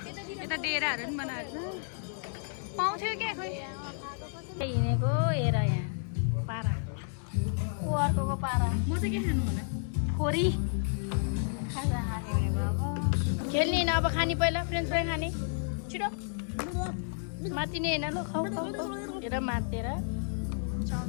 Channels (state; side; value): silent; right; digital silence